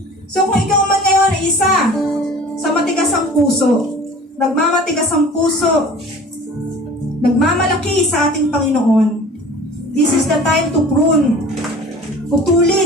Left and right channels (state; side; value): normal; both; correlation 0.43